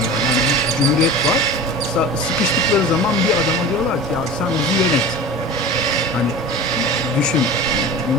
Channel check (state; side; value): normal; both; correlation 0.34